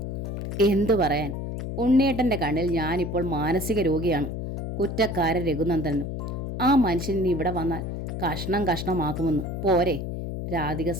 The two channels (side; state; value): left; noise; hum, 4 dB below the sound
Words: എന്തു പറയാൻ, ഉണ്ണിയേട്ടൻ്റെ കണ്ണിൽ ഞാനിപ്പോൾ മാനസിക രോഗിയാണ്. കുറ്റക്കാരൻ രഘുനന്ദനും. ആ മനുഷ്യൻ ഇവിടെ വന്നാൽ കഷ്ണം കഷ്ണമാക്കുമെന്ന് പോരെ? രാധിക